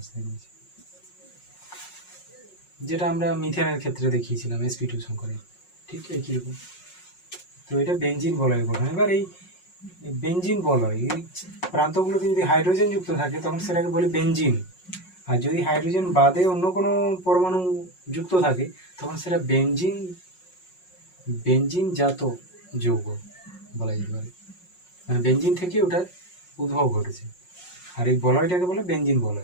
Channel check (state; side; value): late; right; 5.5 ms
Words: রয়েছে, যেটা আমরা মিথেনের ক্ষেত্রে দেখিয়েছিলাম sp2 সংকরায়িত, ঠিক একই রকম। তো এটা বেনজিন বলয়ের গঠন। এবার এই বেনজিন বলয় এই প্রান্তগুলোতে যদি হাইড্রোজেন যুক্ত থাকে তখন সেটাকে বলে বেনজিন, আর যদি হাইড্রোজেন বাদে অন্য কোনো পরমাণু যুক্ত থাকে তখন সেটা বেনজিন জাত যৌগ বলা যেতে পারে, মানে বেনজিন থেকে ওটার উদ্ভব ঘটেছে। আর এই বলয়টাকে বলে বেনজিন